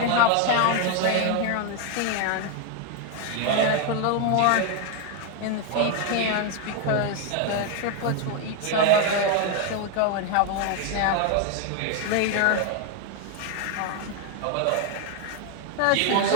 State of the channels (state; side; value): different; both; correlation 0.01